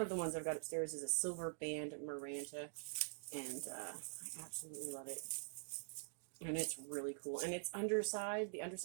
ones I've got upstairs is a silver band Maranta, and I absolutely love it. And it's really cool. And its underside, the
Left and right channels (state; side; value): silent; left; digital silence